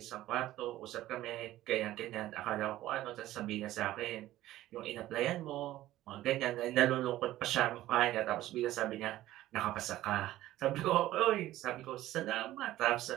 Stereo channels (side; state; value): left; quieter; 15.0 dB